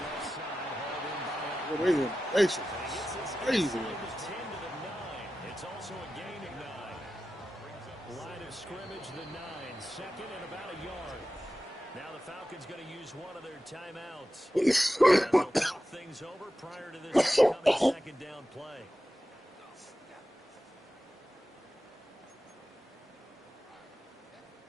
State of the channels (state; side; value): normal; both; correlation 0.93